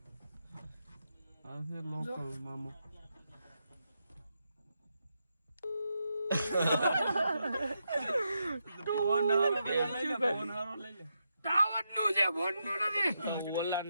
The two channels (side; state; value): both; inverted; correlation -0.84